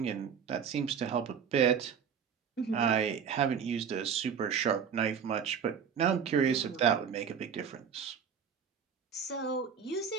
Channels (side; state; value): left; quieter; 7.2 dB